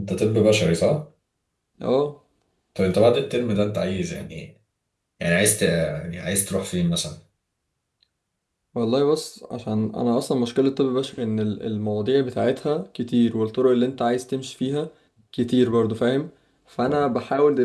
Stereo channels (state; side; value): identical; both; correlation 1.00